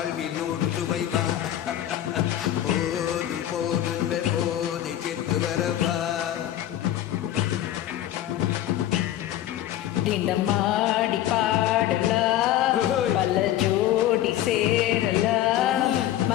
நூறு சுவைப்பா போதும் போதும் போதை சேர்ந்து வரப்பா தினமாடி பாடலாம் பல ஜோடி சேரலாம்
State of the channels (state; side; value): quieter; right; 12.6 dB